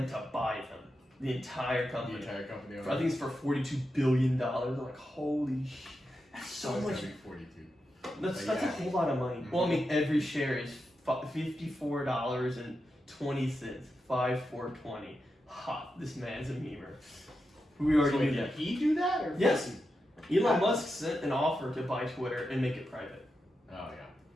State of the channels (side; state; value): both; normal; correlation 0.88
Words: to buy them. The entire company. I think it's for $42 billion. I'm like, holy shit. That's so much. 42. That's a whole lot of money. Mm-hmm. Well, I mean, every share is $54.20. $5,420. Ha, this man's a memer. We already knew that. Did he do that? Or yes. Elon Musk sent an offer to buy Twitter and make it private. Oh, yeah.